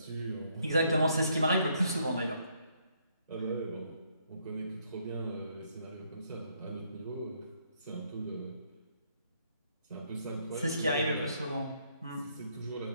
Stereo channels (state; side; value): inverted; both; correlation -0.71